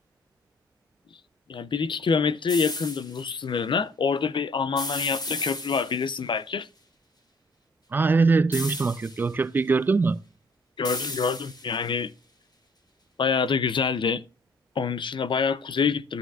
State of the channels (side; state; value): both; normal; correlation 0.57